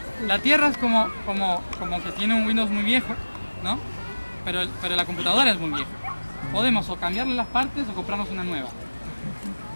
La Tierra es como que tiene un Windows muy viejo, ¿no? Pero la computadora es muy vieja. Podemos o cambiarle las partes o comprarnos una nueva.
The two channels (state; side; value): inverted; both; correlation -1.00